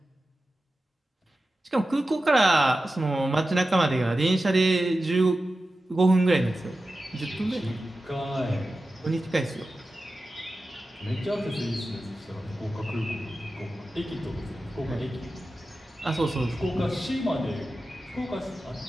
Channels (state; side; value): normal; both; correlation 0.93